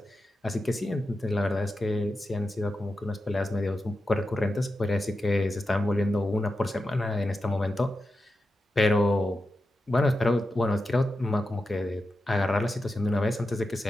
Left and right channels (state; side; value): normal; both; correlation 0.90